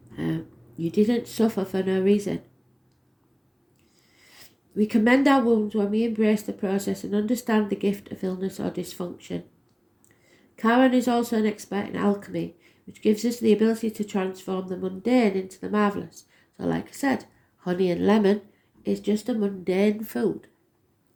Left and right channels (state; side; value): identical; both; correlation 1.00